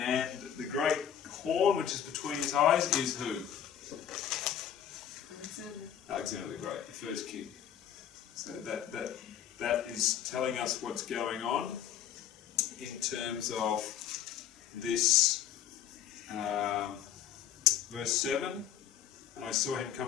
the great horn which is between his eyes is who? Alexander the Great, the first king. So that is telling us what's going on in terms of this verse 7. And I saw him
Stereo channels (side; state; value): right; quieter; 9.9 dB